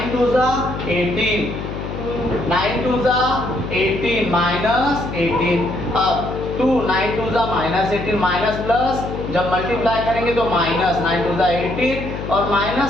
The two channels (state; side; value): noise; left; hum, 7 dB below the sound